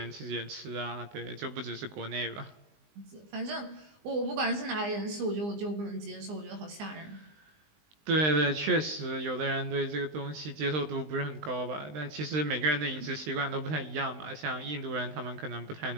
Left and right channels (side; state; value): left; late; 20 ms